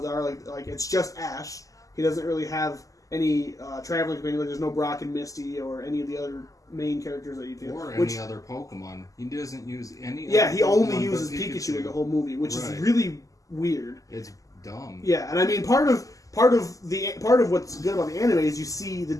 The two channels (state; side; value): late; right; 0.16 ms